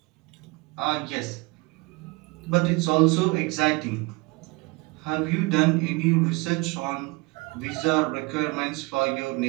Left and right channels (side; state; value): left; quieter; 24.8 dB